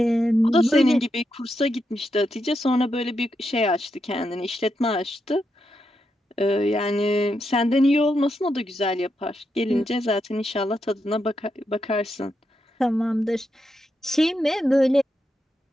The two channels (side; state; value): both; normal; correlation 0.84